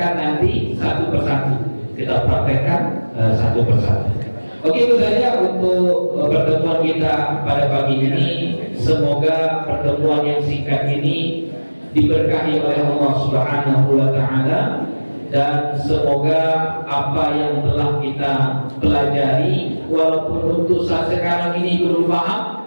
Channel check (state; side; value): inverted; both; correlation -1.00